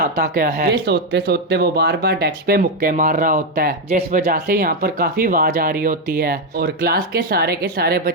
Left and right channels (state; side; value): normal; both; correlation 0.04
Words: क्या है। ये सोचते सोचते वो बार बार डेस्क पे मुक्के मार रहा होता है, जिस वजह से यहाँ पर काफी आवाज आ रही होती है और क्लास के सारे